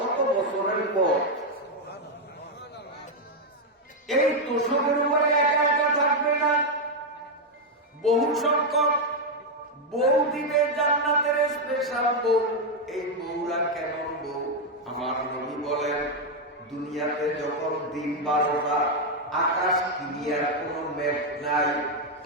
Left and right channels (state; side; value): normal; both; correlation 0.02